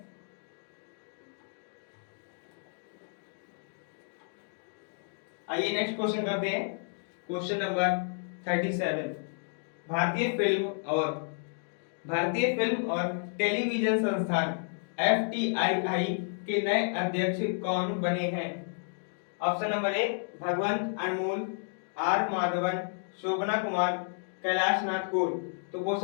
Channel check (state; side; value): silent; right; digital silence